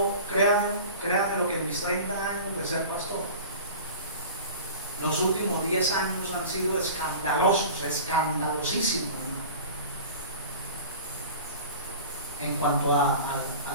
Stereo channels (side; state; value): both; inverted; correlation -0.38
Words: créanme lo que en mis 30 años de ser pastor, los últimos 10 años han sido escandalosos, escandalosísimos, hermano, en cuanto